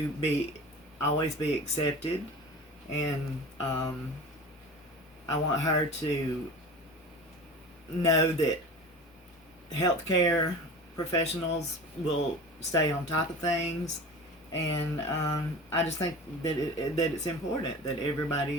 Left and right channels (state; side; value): normal; both; correlation 0.35